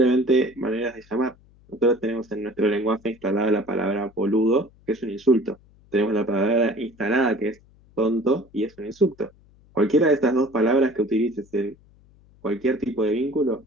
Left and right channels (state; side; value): noise; left; hum, 29 dB below the sound